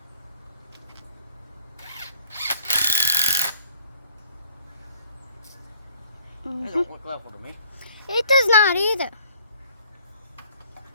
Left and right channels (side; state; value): both; inverted; correlation -0.56